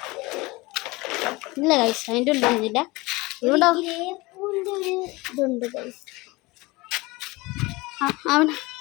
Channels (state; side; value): quieter; right; 22.7 dB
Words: ഇല്ല ഗൈസ്, അതിൻ്റെ ഉള്ളില്ല. ഇവിടെ ഇതുണ്ട് ഗൈസ്. അവിടെ